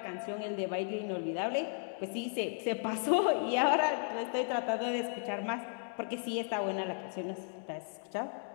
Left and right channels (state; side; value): silent; right; 54 dB below the other